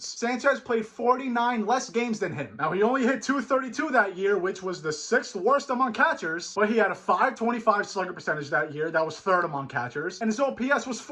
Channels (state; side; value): identical; both; correlation 1.00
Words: Sanchez played 49 less games than him. Now, he only hit .232 that year, which was the 6th worst among catchers, but he had a .525 slugger percentage that year. That was 3rd among catchers, and his OPS was